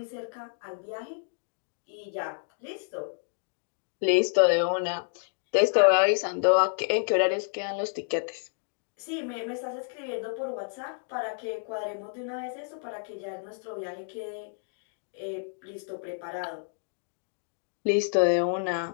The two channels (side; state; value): right; silent; 58 dB below the other